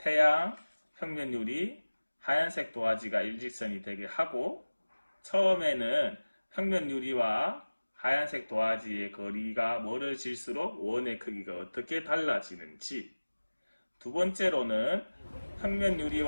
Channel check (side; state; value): both; inverted; correlation -1.00